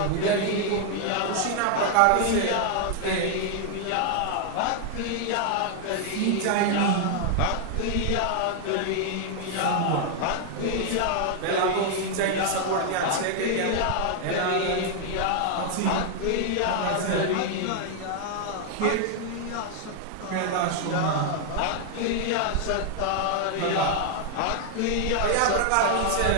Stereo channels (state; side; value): different; both; correlation 0.00